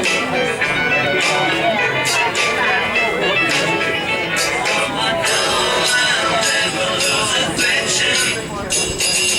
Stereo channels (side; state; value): both; identical; correlation 1.00